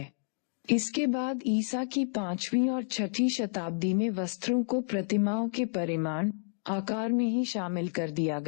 इसके बाद ईसा की पांचवी और छठी शताब्दी में वस्त्रों को प्रतिमाओं के परिमाण, आकार में ही शामिल कर दिया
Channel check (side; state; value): right; silent; digital silence